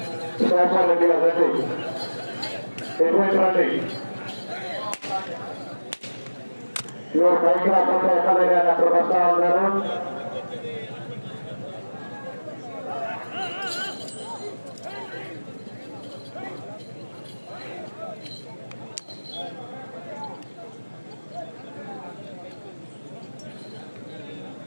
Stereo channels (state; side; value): inverted; both; correlation -1.00